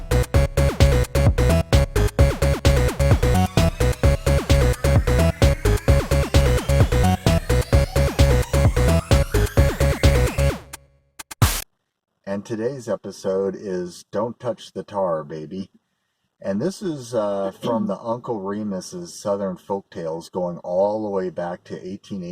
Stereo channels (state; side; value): identical; both; correlation 1.00